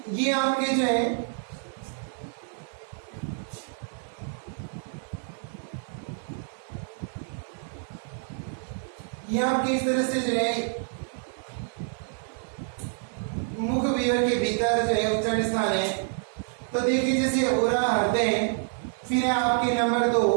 ये आपके जो है ये आपके इस तरह से जो है मुख विवर के भीतर जो है उच्चारण स्थान है। तो देखिए जैसे उरा हृदय, फिर है आपके नंबर 2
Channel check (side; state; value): left; silent; 60 dB below the other